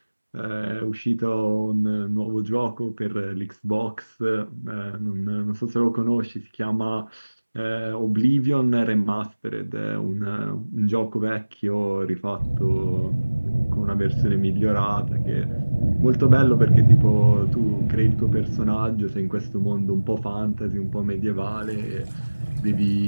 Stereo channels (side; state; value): both; inverted; correlation -1.00